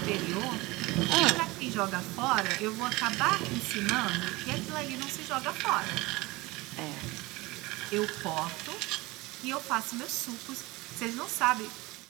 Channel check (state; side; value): quieter; left; 22.0 dB